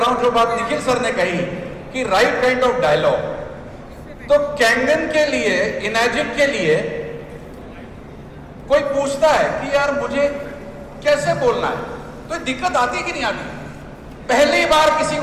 हूं जो बात निखिल सर ने कही कि राइट काइंड ऑफ डायलॉग। तो कैंगन के लिए, इनर्जिक के लिए कोई पूछता है कि यार मुझे कैसे बोलना है, तो दिक्कत आती कि नहीं आती? पहली बार किसी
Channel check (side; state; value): both; identical; correlation 1.00